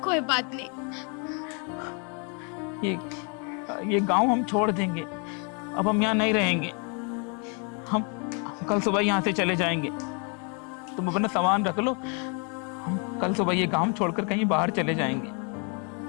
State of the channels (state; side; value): quieter; right; 37.0 dB